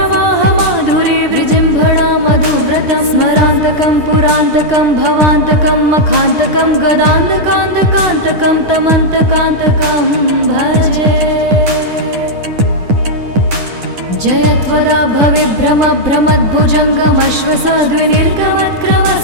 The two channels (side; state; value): left; late; 10 ms